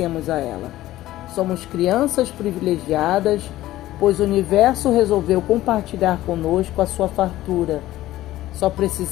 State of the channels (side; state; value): right; quieter; 15.3 dB